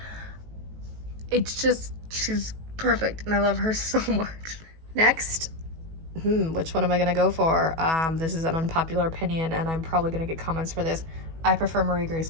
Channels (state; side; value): late; left; 18 ms